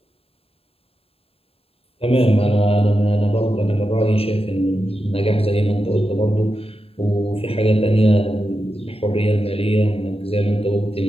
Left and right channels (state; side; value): late; right; 0.28 ms